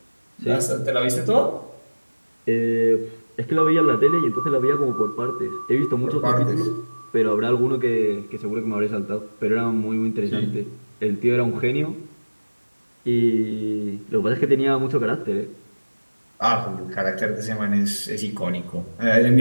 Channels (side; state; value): both; inverted; correlation -1.00